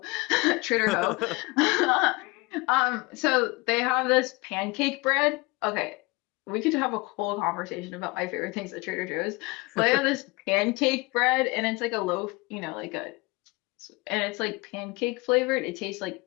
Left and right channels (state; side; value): quieter; right; 24.7 dB